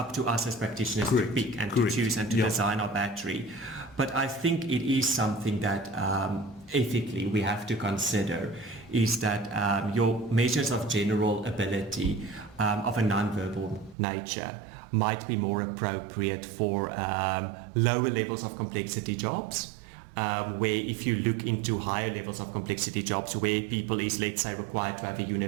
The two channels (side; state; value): left; drops out; at 14.0 s